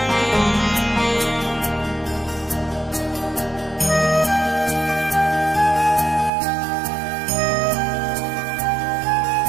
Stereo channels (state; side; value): drops out; left; at 6.3 s